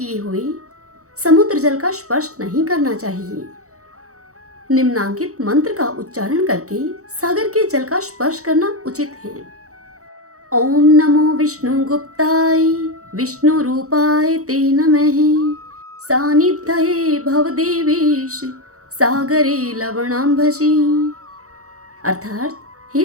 हुए समुद्र जल का स्पर्श नहीं करना चाहिए। निम्नांकित मंत्र का उच्चारण करके सागर के जल का स्पर्श करना उचित है। ओम नमो विष्णु गुप्ताय विष्णु रूपाय ते नमः। सानिध्यये भवदेवेश सागरे लवणांभसी। अर्थात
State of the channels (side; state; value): left; late; 0.65 ms